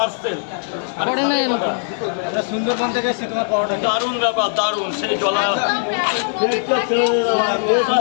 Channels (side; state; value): right; silent; 63 dB below the other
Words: সুন্দরবন থেকে এসেছি তোমার পরোটা। দারুণ ব্যাপার, দারুণ। সেই জলা